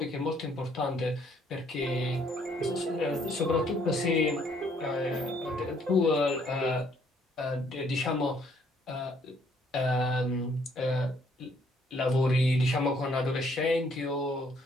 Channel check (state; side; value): normal; both; correlation 0.66